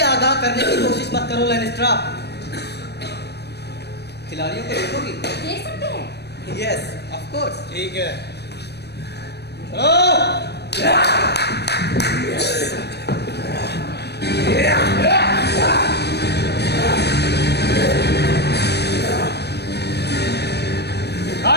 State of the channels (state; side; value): late; right; 0.48 ms